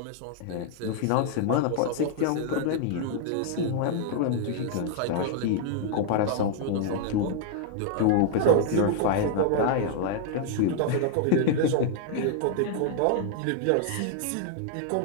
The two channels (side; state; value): both; different; correlation 0.00